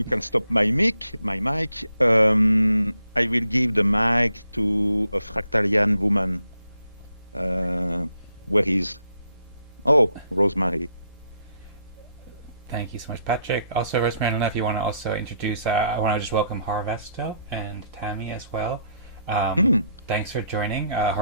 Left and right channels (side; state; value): both; inverted; correlation -0.75